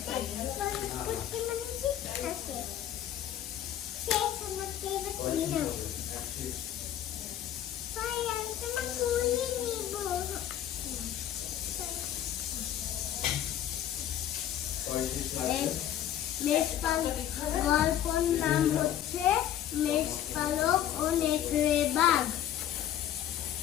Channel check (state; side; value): quieter; right; 11.2 dB